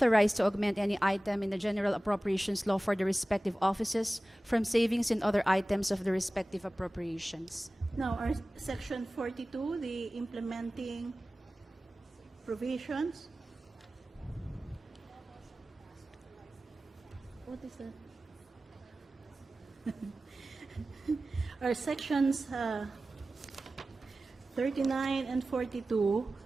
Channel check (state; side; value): normal; both; correlation 0.97